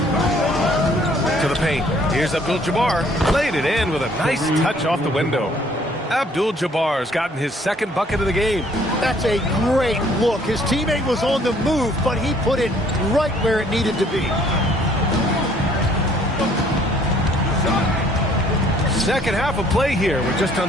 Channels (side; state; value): both; normal; correlation 0.61